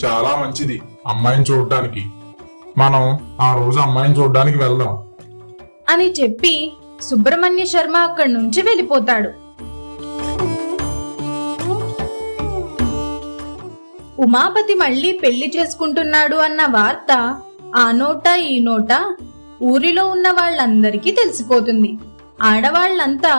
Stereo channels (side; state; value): both; inverted; correlation -1.00